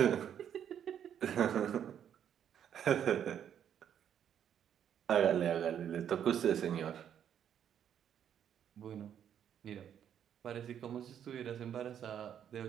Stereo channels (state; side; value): quieter; left; 9.2 dB